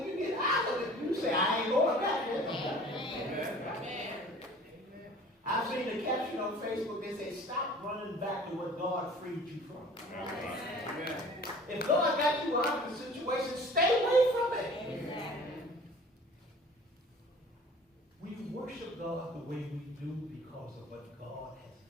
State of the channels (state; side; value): normal; both; correlation 0.46